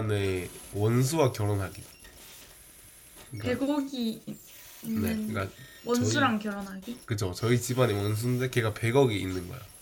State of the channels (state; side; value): identical; both; correlation 1.00